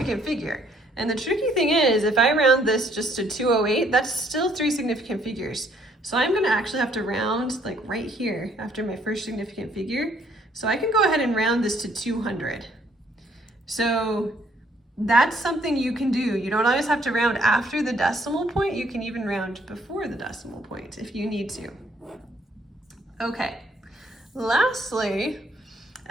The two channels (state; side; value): normal; both; correlation 0.66